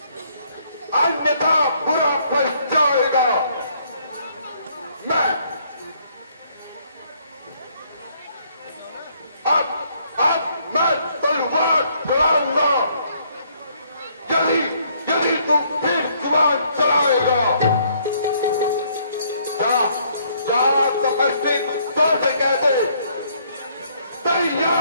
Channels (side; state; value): both; inverted; correlation -0.66